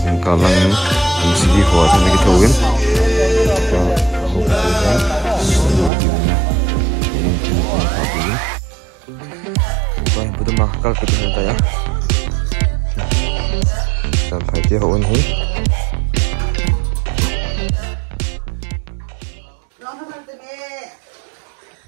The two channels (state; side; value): drops out; left; at 5.9 s